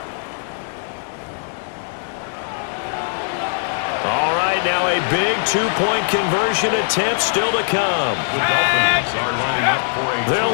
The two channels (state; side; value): silent; right; 63 dB below the other